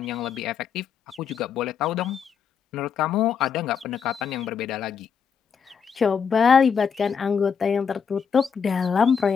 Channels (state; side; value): quieter; right; 6.6 dB